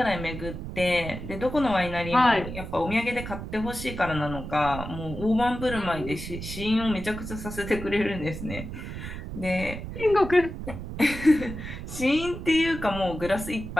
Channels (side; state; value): right; noise; rumble, 8 dB below the sound